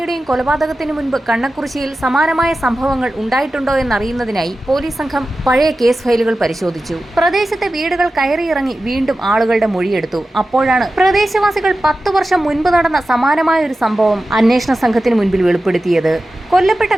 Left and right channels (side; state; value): both; normal; correlation 0.94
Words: കൊലപാതകത്തിന് മുൻപ് കണ്ണക്കുറിശ്ശിയിൽ സമാനമായ സംഭവങ്ങൾ ഉണ്ടായിട്ടുണ്ടോ എന്നറിയുന്നതിനായി പോലീസ് സംഘം പഴയ കേസ് ഫയലുകൾ പരിശോധിച്ചു. പ്രദേശത്തെ വീടുകൾ കയറിയിറങ്ങി വീണ്ടും ആളുകളുടെ മൊഴിയെടുത്തു. അപ്പോഴാണ് പ്രദേശവാസികൾ 10 വർഷം മുൻപ് നടന്ന സമാനമായ ഒരു സംഭവം അന്വേഷണ സംഘത്തിന് മുൻപിൽ വെളിപ്പെടുത്തിയത്. കൊല്ലപ്പെട്ട